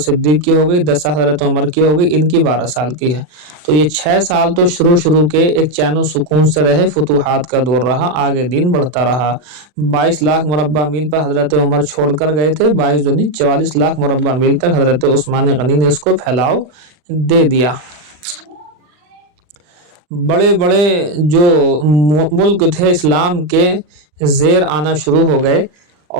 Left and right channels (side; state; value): left; late; 39 ms